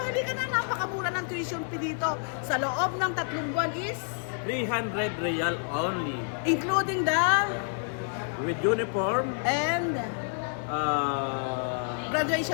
Halika na, napakamura ng tuition fee dito. Sa loob ng 3 buwan is 300 real only. including the With uniform, and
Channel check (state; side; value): silent; right; 59 dB below the other